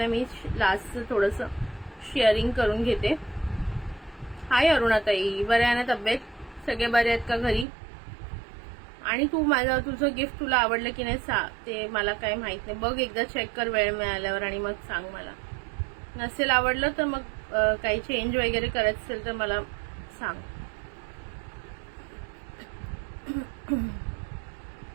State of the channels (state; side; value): drops out; left; at 7.7 s